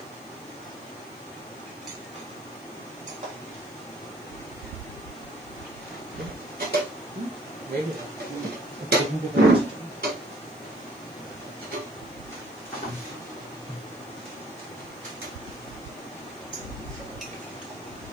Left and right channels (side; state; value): left; noise; hiss, 24 dB below the sound